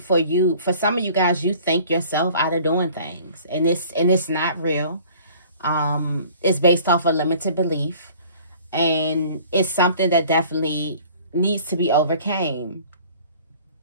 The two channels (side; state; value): both; inverted; correlation -0.50